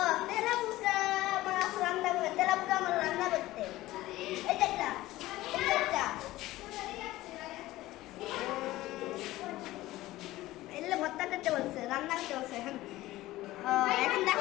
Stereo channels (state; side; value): quieter; right; 17.0 dB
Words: তেলাপোকা মাছ রান্না করে, তেলাপোকা মাছ রান্না করতে। এই দেখটা, এই দেখটা। এলে ভর্তা করতে বলছে, রান্না করতে বলছে। এখন